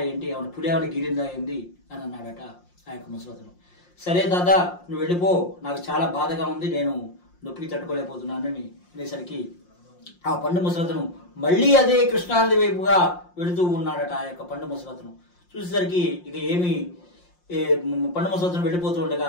ఏంటి, ఎవరిని పుడేవాడిని గిరిందా ఏంది అని అన్నాడట ఆ యొక్క ముసలతను. సరే దాదా, నువ్వు వెళ్ళిపో, నాకు చాలా బాధగా ఉంది, నేను నొప్పికి తట్టుకోలేకపోతున్నానని అనేసరికి ఆ పండు ముసలతను మళ్ళీ అదే కృష్ణానది వైపుగా వెళుతూ ఉన్నాడట ఆ యొక్క పండు ముసలతను. చూసేసరికి ఇక ఏమి పండు ముసలతను వెళ్ళిపోతూ ఉండగా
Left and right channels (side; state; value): right; late; 5.6 ms